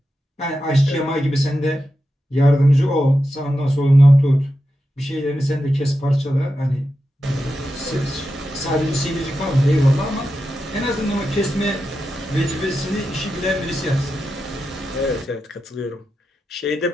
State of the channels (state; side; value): normal; both; correlation 0.89